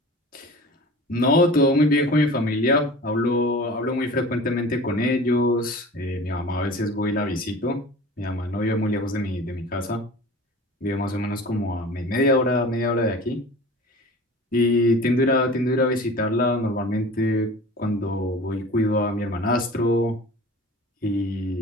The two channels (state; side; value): normal; both; correlation 0.40